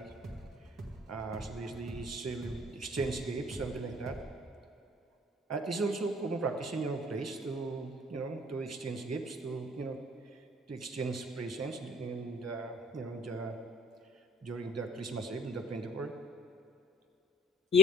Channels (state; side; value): normal; both; correlation 0.54